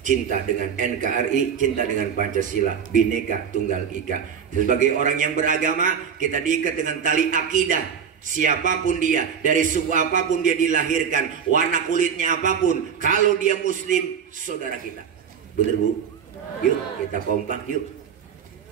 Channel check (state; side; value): quieter; left; 7.3 dB